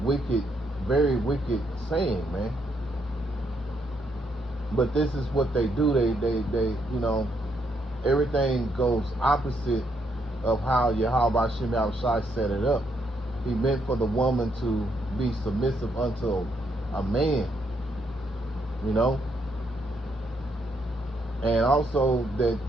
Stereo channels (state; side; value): normal; both; correlation 0.75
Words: very wicked saying, man. But this is what they do. They everything goes opposite of how Yahweh Shem Yahushai set it up. He meant for the woman to be submissive unto a man, and also that